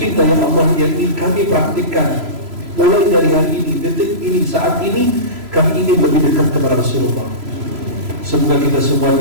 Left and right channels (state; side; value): late; left; 3.0 ms